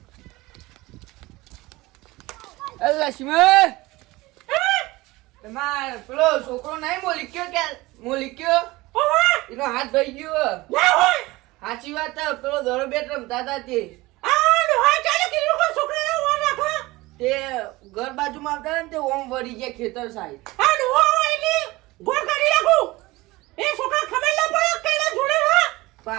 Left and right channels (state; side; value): quieter; left; 20.5 dB